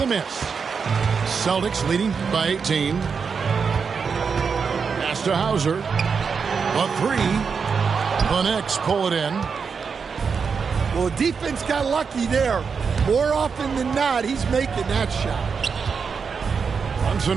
miss. Celtics leading by 18. Pass to Hauser. A three. The Knicks pull it in. Well, defense got lucky there. More often than not, he's making that shot.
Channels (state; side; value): quieter; left; 5.8 dB